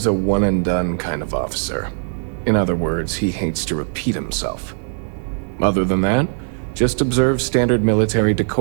a one-and-done kind of officer. In other words, he hates to repeat himself. Other than that, just observe standard military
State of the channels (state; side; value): silent; left; digital silence